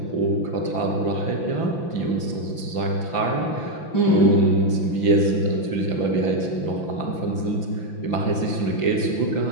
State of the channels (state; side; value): late; right; 5.9 ms